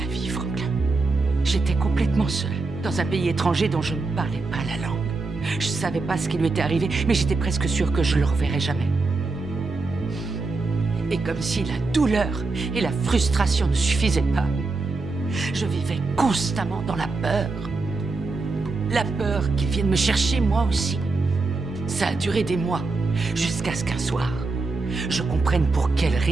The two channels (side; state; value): left; quieter; 3.7 dB